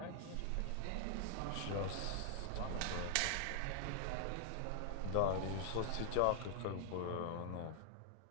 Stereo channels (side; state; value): both; different; correlation -0.01